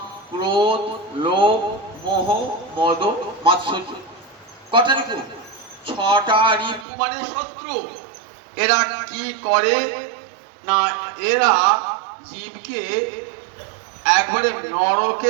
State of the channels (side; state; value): left; drops out; at 6.9 s